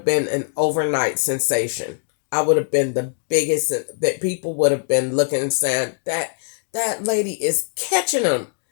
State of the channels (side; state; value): right; silent; digital silence